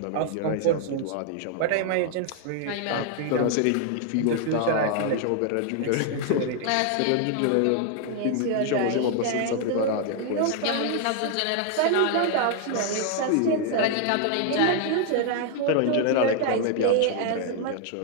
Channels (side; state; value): both; different; correlation 0.00